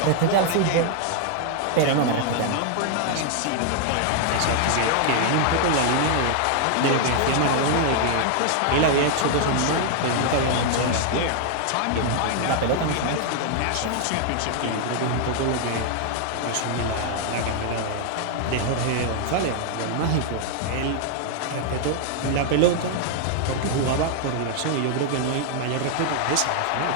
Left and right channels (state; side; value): different; both; correlation 0.00